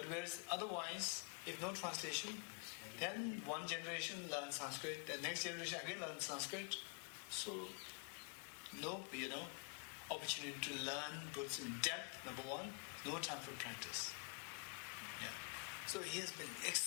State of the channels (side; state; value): right; quieter; 34.6 dB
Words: whereas otherwise, if no translation, then one generation learns Sanskrit, the next generation again learns Sanskrit. So, no, opportunity to learn Buddhism in depth, number one, no time for practice. Yeah. So he has been